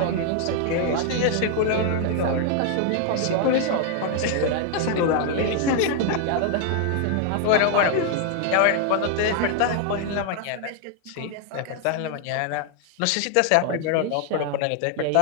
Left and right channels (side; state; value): both; different; correlation 0.00